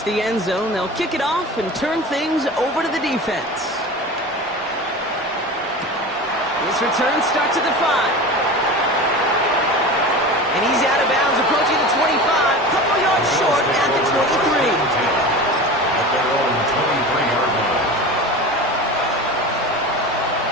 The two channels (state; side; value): normal; both; correlation 0.32